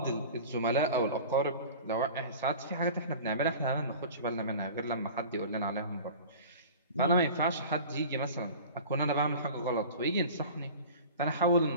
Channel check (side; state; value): both; inverted; correlation -0.38